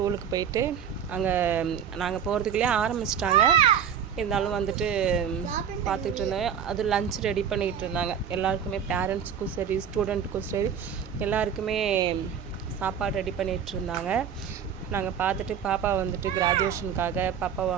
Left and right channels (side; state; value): left; quieter; 8.1 dB